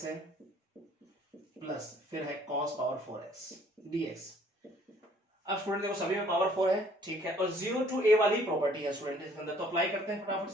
है, प्लस फिर है cos पावर 4x dx। अब स्टूडेंट देखो सभी में पावर 4 है, ठीक है, और 0 टू a वाली प्रॉपर्टी है स्टूडेंट इसके अंदर, तो अप्लाई करते हैं फटाफट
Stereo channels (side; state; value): both; normal; correlation 0.59